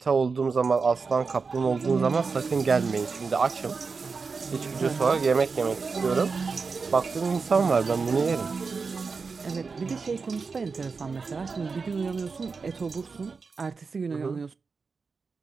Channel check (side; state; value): left; quieter; 4.8 dB